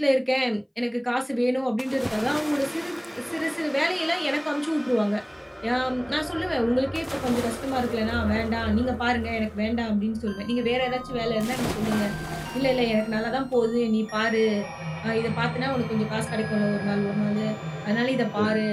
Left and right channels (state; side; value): identical; both; correlation 1.00